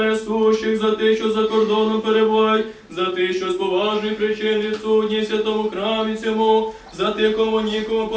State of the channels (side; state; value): both; identical; correlation 1.00